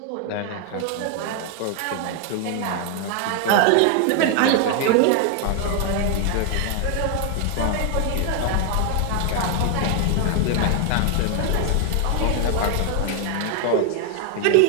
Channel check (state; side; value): different; both; correlation 0.00